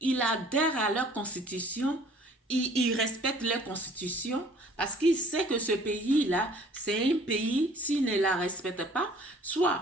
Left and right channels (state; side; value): normal; both; correlation 0.53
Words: il adhère à leur constitution, il respecte leur constitution parce qu'il sait que ce pays-là, c'est un pays, s'il ne la respecte pas, soit